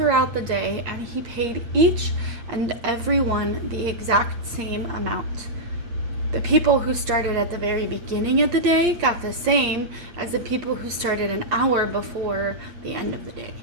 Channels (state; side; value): late; left; 8.5 ms